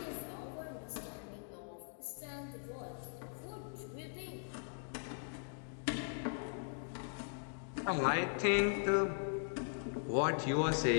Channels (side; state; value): right; silent; digital silence